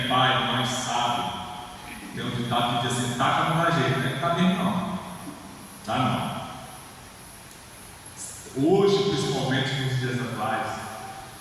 pai, mãe, sabe, tem um ditado que diz assim: taca não dá jeito, né? Tá bem não. Tá não. Hoje, principalmente nos dias atuais,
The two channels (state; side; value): identical; both; correlation 1.00